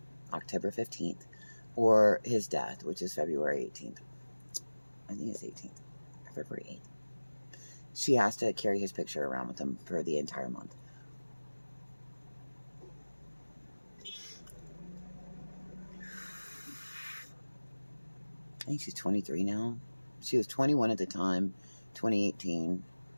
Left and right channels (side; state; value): both; inverted; correlation -1.00